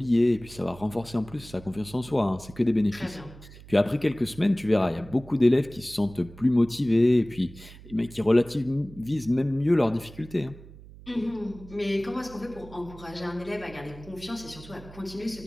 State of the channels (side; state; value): right; noise; hum, 18 dB below the sound